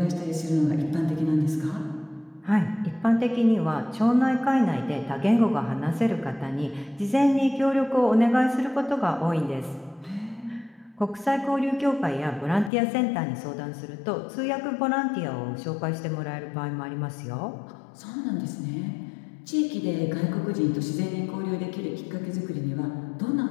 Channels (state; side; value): drops out; right; at 12.7 s